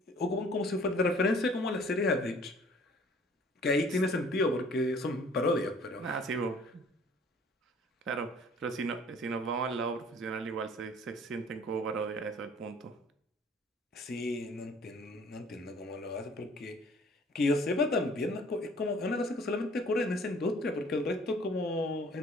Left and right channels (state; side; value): normal; both; correlation 0.53